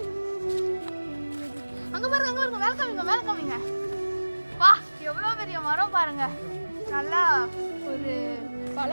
அங்க பாருங்க, அங்க பாருங்க, மேல காமிங்க, மேல காமிங்க. வா, எவ்வளவு பெரிய மரம் பாருங்க. நல்லா ஒரு பல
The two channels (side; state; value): both; inverted; correlation -1.00